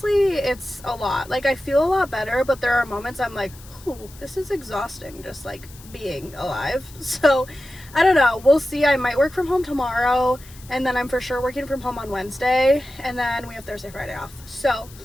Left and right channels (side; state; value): left; noise; hiss, 21 dB below the sound